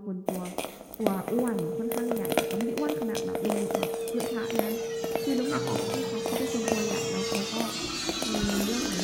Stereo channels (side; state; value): both; identical; correlation 1.00